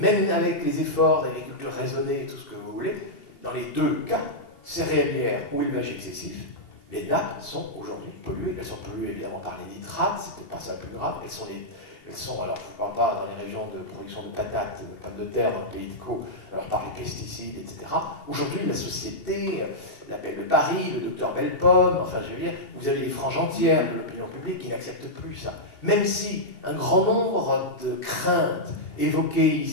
avec les efforts d'agriculture raisonnée et tout ce que vous voulez, dans les deux cas, céréalière ou élevage excessif, les nappes sont aujourd'hui polluées. Elles sont polluées évidemment par les nitrates, c'est peut-être pas ça le plus grave, elles sont, alors je ne parle pas dans les régions de production de patates, de pommes de terre, dans le pays de Caux, alors par les pesticides, etc. Aujourd'hui, la société, le Paris, le docteur Bellepomme, enfin je veux dire, vous avez les franges entières de l'opinion publique qui n'acceptent plus ça. Même si un grand nombre de craintes évoquées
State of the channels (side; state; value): right; late; 2.8 ms